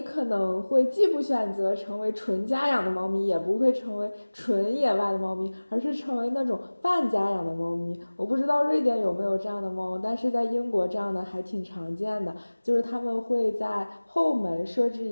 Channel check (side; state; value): both; inverted; correlation -1.00